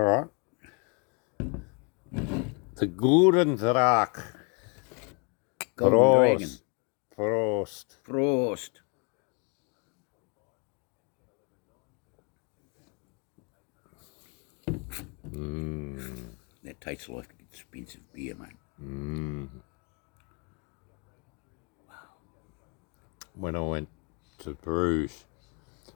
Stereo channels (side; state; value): right; quieter; 33.6 dB